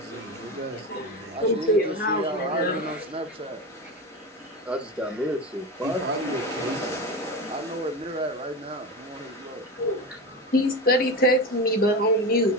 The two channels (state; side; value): normal; both; correlation 0.23